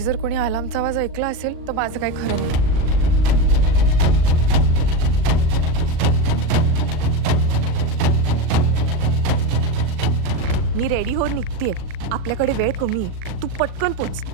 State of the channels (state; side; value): late; left; 39 ms